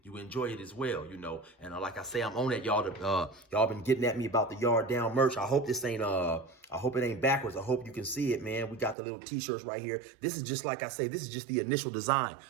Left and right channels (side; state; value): left; drops out; at 9.0 s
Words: you enjoy it as well, And like I say, I'm on that, y'all. Y'all been getting at me about the Yard Down merch. I hope this ain't, I hope it ain't backwards. I hope you can see it, man. We got the little t-shirts right here. This is just, like I say, this is just the initial design.